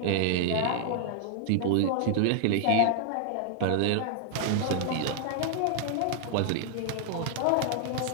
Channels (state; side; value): different; both; correlation -0.01